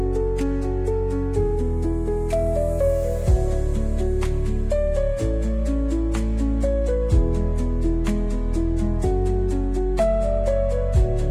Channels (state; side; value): identical; both; correlation 1.00